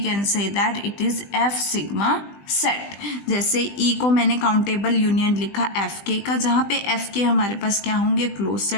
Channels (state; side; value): late; right; 20 ms